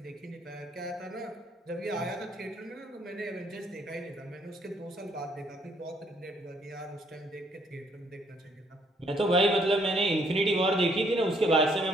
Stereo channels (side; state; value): both; normal; correlation 0.67